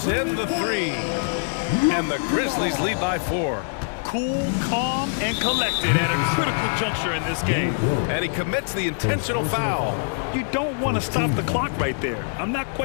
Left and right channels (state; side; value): silent; right; digital silence